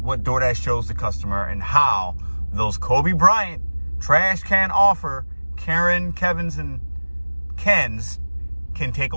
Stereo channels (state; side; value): inverted; both; correlation -1.00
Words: DoorDash shows the customer, and how those Kobe Bryant trash can offer Karen, Kevin's, and Ken's can take